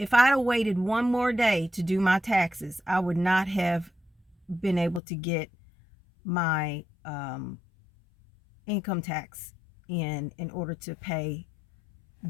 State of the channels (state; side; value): drops out; right; at 5.0 s